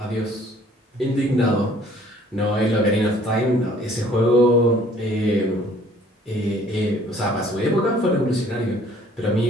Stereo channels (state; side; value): normal; both; correlation 0.56